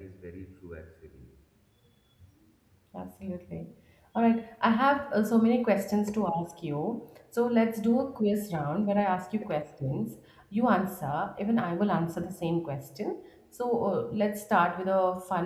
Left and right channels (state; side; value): identical; both; correlation 1.00